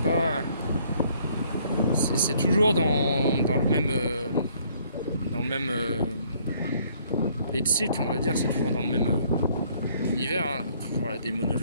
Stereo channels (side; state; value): both; inverted; correlation -0.63